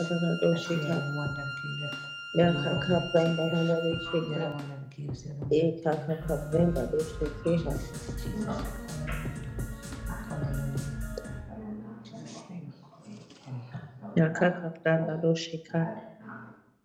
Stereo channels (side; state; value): both; identical; correlation 1.00